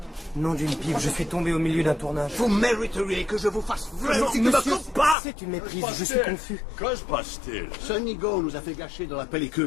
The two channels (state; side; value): drops out; right; at 5.2 s